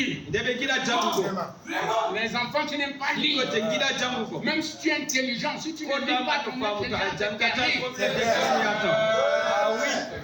Les enfants qui n'aiment pas lire, même si tu es intelligent, si tu ne lis pas ton intelligence, c'est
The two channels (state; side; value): identical; both; correlation 1.00